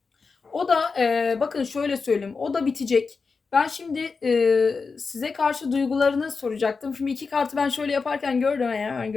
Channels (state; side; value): quieter; right; 4.7 dB